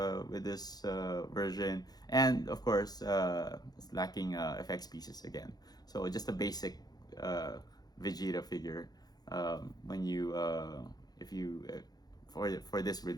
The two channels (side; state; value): right; late; 0.19 ms